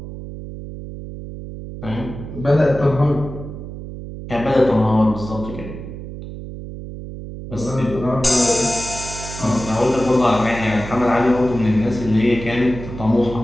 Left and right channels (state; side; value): noise; right; hum, 11 dB below the sound